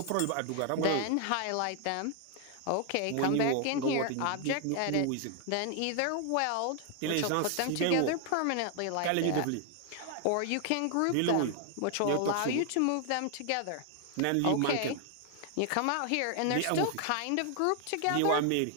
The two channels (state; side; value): different; both; correlation 0.00